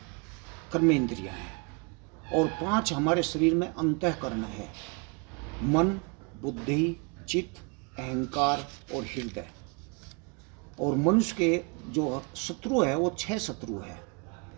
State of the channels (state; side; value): quieter; left; 32.6 dB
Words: कर्मेंद्रियां हैं। और 5 हमारे शरीर में अंतःकरण है, मन, बुद्धि, चित्त, अहंकार और हृदय। और मनुष्य के जो शत्रु है वो 6 शत्रु है,